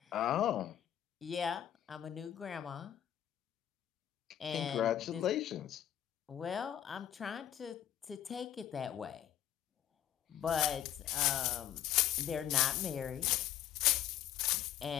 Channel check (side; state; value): right; quieter; 11.1 dB